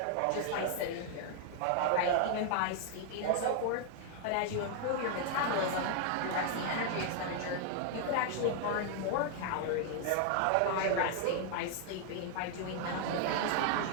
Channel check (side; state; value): both; different; correlation 0.00